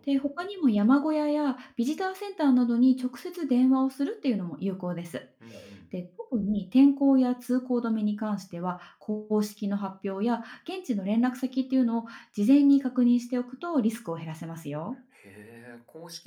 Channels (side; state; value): both; identical; correlation 1.00